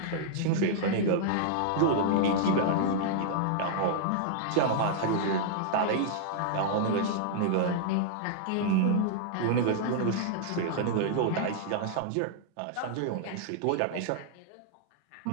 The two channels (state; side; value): different; both; correlation -0.01